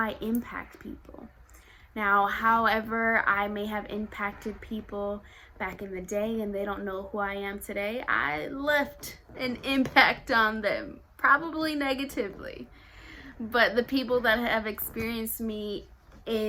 impact people. Now, however I may have impacted people back in the day and they don't know who I am today, I left an impact on them, probably negatively. But the people that have experienced me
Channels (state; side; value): identical; both; correlation 1.00